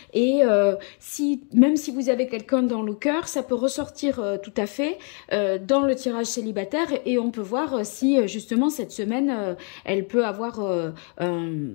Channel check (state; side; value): quieter; right; 39.8 dB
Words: et même si vous avez quelqu'un dans le cœur, ça peut ressortir tout à fait dans le tirage célibataire et on peut voir si justement cette semaine elle peut avoir